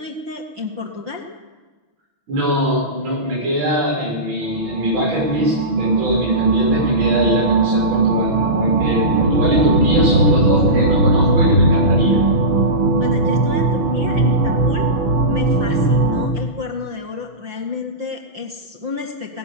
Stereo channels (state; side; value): late; left; 6.1 ms